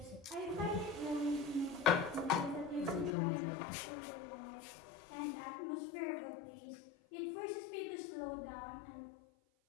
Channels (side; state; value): right; drops out; at 3.2 s